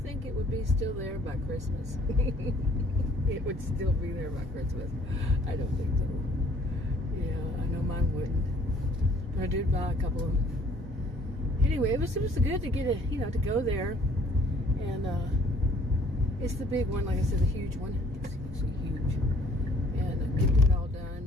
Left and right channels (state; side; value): normal; both; correlation 0.58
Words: it would be still there by Christmas? It would still be there by Christmas. I don't think so. Yeah, I know mine wouldn't. But I did buy a couple of them. Anyway, it was good to get to go there. And it's the big one, like I said, the huge one. It's huge. And get it all